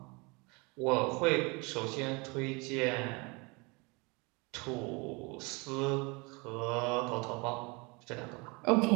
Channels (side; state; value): left; quieter; 27.9 dB